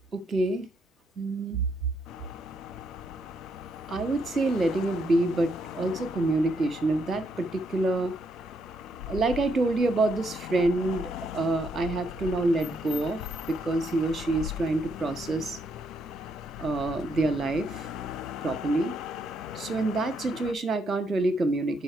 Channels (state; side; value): normal; both; correlation 0.75